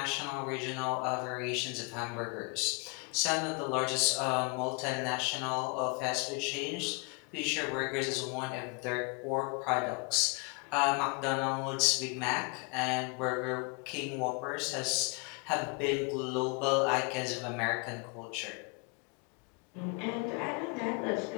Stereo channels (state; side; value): quieter; right; 33.2 dB